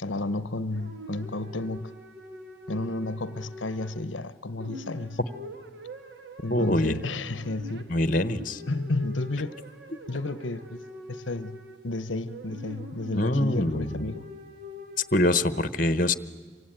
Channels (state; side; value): normal; both; correlation 0.56